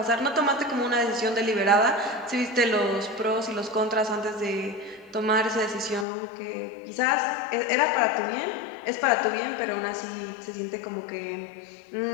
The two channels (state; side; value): drops out; right; at 6.1 s